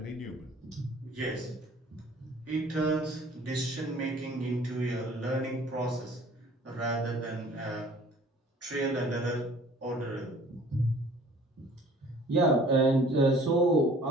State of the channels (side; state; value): both; normal; correlation 0.51